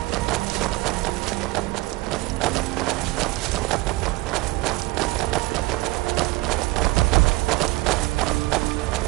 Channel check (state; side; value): quieter; left; 21.3 dB